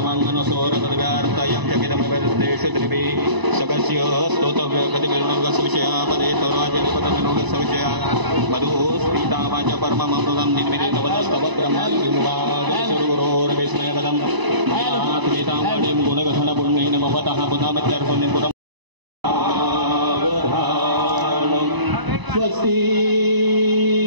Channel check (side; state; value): left; late; 1.0 ms